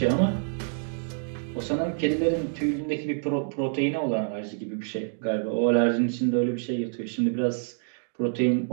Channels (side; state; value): left; silent; 60 dB below the other